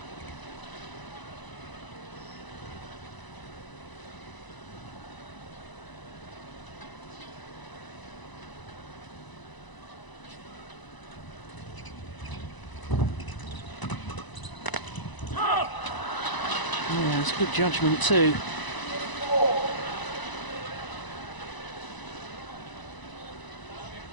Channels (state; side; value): late; right; 1.0 ms